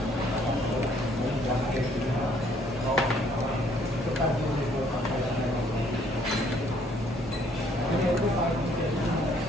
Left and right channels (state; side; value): normal; both; correlation 0.64